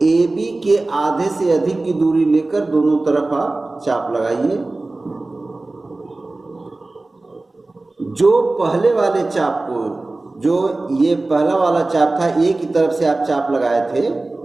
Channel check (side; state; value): left; quieter; 3.1 dB